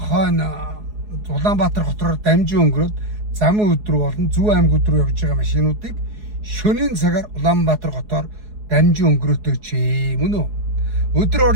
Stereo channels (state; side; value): late; left; 4.7 ms